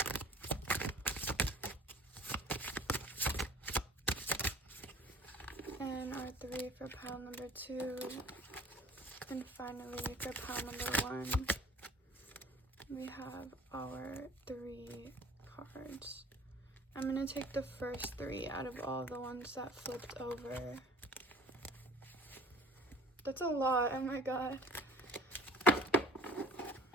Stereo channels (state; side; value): normal; both; correlation 0.48